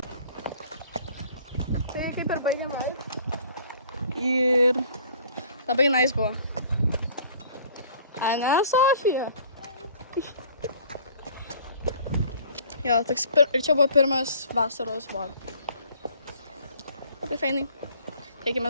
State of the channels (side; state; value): both; inverted; correlation -0.53